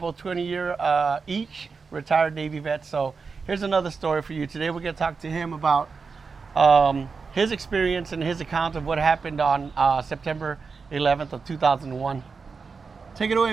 20-year each retired Navy vets. So here's another story for you. Today we're gonna talk to him about his experience and his account of what happened on September 11th of 2001. Take it away,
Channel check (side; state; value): left; quieter; 4.9 dB